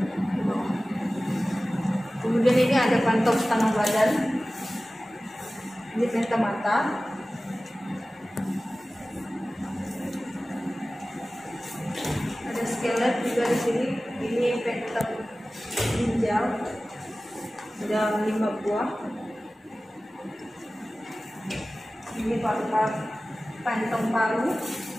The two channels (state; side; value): normal; both; correlation 0.97